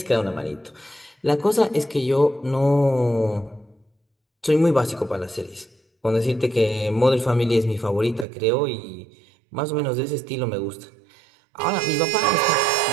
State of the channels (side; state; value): left; drops out; at 8.2 s